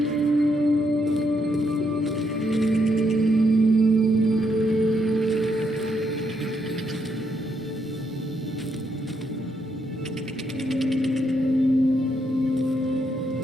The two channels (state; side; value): normal; both; correlation 0.76